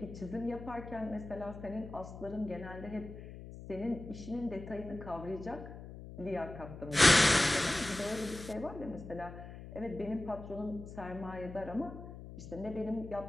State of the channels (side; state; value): left; noise; hum, 12 dB below the sound